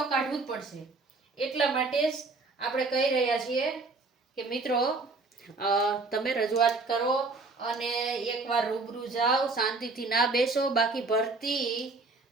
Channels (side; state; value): left; quieter; 3.7 dB